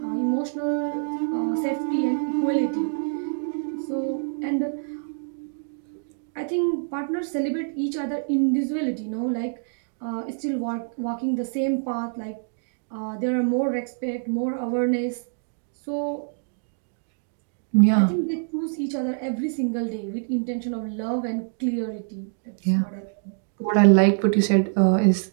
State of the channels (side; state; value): left; silent; digital silence